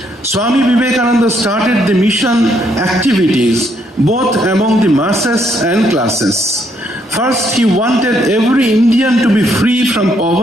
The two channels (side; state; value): both; normal; correlation 0.72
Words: Swami Vivekananda started the mission activities both among the masses and classes. First, he wanted every Indian to be free from